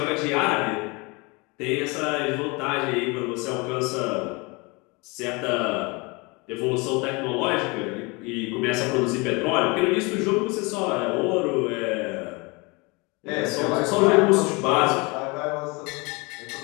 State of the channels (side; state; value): right; quieter; 27.4 dB